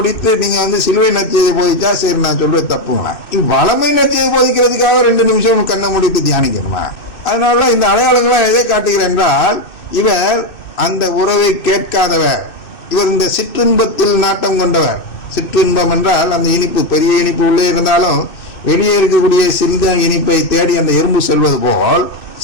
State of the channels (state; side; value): late; right; 2.6 ms